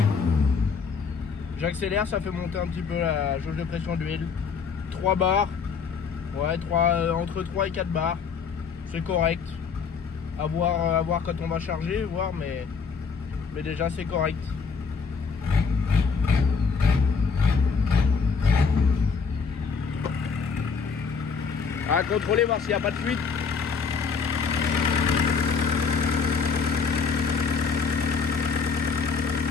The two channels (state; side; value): quieter; right; 5.5 dB